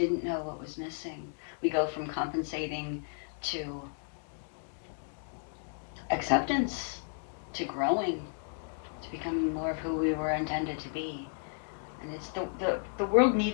know what was missing. We go from compensating to acceptance, to growing, to becoming more of who we were intended to be. And it's the world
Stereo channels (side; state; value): right; silent; digital silence